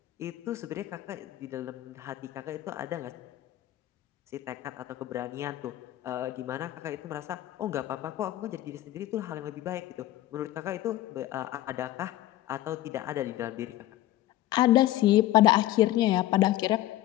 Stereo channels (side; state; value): right; quieter; 14.8 dB